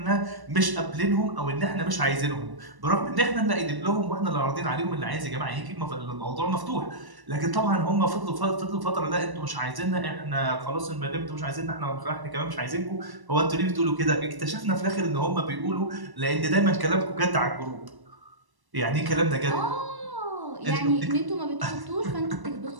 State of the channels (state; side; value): late; left; 1.1 ms